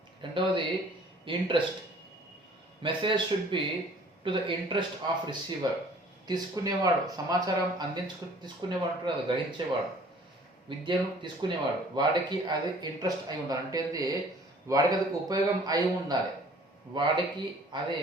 రెండవది interest, message should be to the interest of receiver. తీసుకునేవాడు, సమాచారం తీసుకునేవాడు అంటారు కదా, గ్రహించేవాడు, విద్యను తీసుకునేవాడు, వాడికి అది ఇంట్రెస్ట్ అయి ఉండాలి. అంటే వాడికి అది ఉపయోగం అయి ఉండాలి, వాడికి అది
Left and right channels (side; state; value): both; normal; correlation 0.53